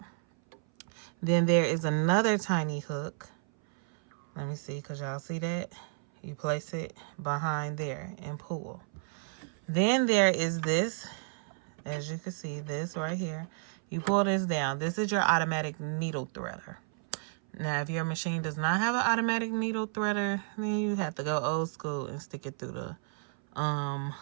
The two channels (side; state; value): left; silent; 57 dB below the other